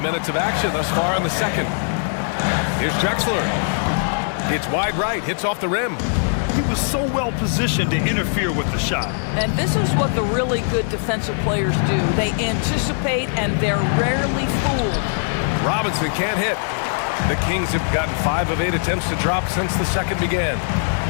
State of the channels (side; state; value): right; silent; digital silence